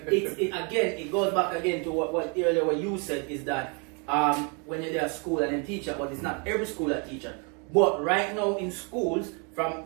it goes back again to what earlier what you said is that when you're there at school and then teacher, but it's not every school that teacher. But right now in schools, from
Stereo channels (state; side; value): quieter; left; 35.4 dB